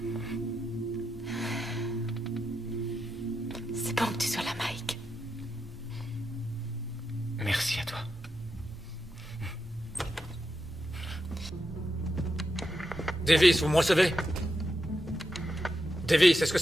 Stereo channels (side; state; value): both; normal; correlation 0.86